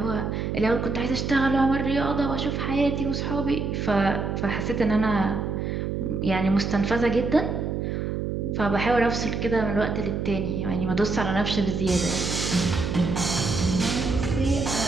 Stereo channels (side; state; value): right; noise; hum, 2 dB below the sound